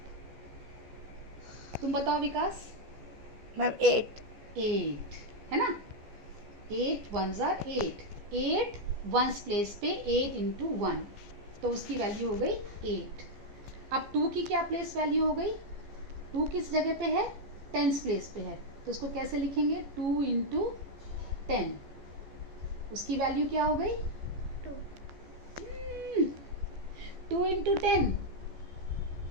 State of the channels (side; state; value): left; late; 14 ms